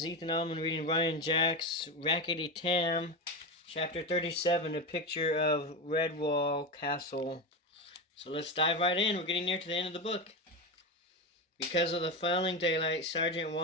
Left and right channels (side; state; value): both; normal; correlation 0.17